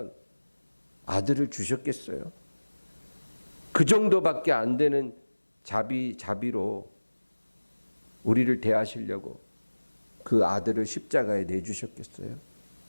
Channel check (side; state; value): both; inverted; correlation -1.00